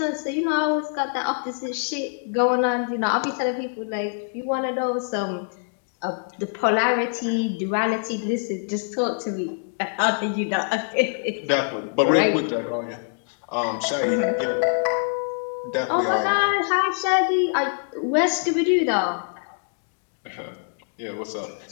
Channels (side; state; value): right; silent; digital silence